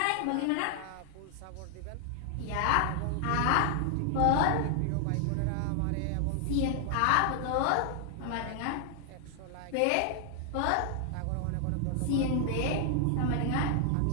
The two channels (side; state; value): both; different; correlation 0.00